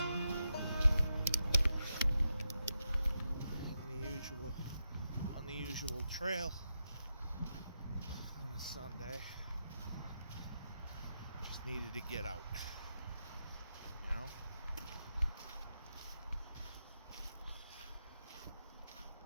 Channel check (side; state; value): both; inverted; correlation -0.85